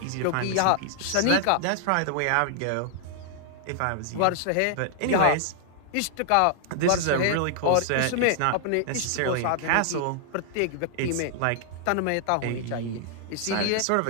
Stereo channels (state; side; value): different; both; correlation 0.00